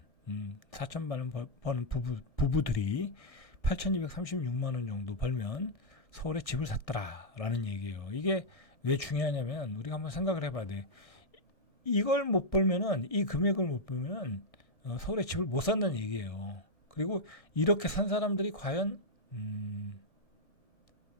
4천만 원 버는 부부들이 8,236만 원 정도 벌면 서울에 집을 샀더라라는 얘기예요. 이게 왜 중요하냐면 우리가 한번 생각을 해봐야 돼. 이걸 못 벌면은 이 금액을 못 벌면은 서울에 집을 못 산다는 얘기예요. 그리고 이렇게 산 사람들이 과연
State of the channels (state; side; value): late; right; 1.7 ms